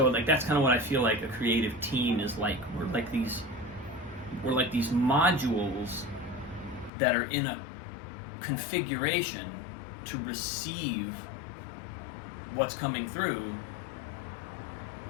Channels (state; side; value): drops out; right; at 6.9 s